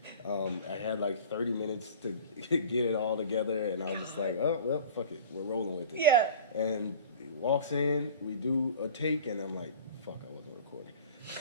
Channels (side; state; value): both; inverted; correlation -0.41